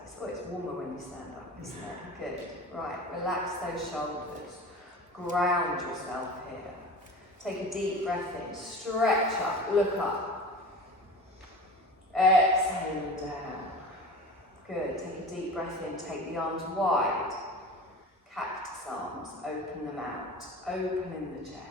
Oh, it's warmer when you stand up, isn't it? Good. Right, relax those shoulders. Ground yourself here. Take a deep breath in. Stretch up, look up. Exhale down. Good. Take a deep breath in. Take the arms wide. Cactus arms. Open them out. Open in the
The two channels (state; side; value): normal; both; correlation 0.35